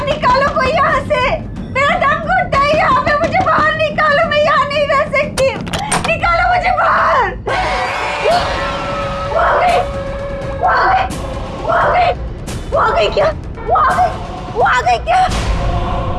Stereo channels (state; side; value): identical; both; correlation 1.00